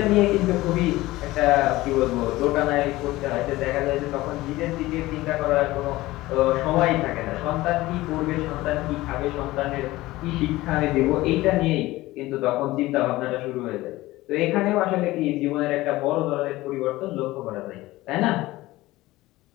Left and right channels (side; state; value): right; quieter; 18.2 dB